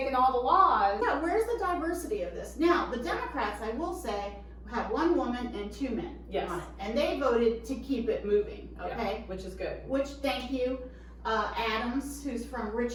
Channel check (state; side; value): identical; both; correlation 1.00